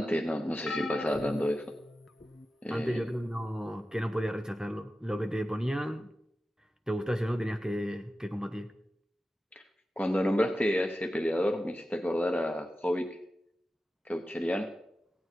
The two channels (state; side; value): normal; both; correlation 0.93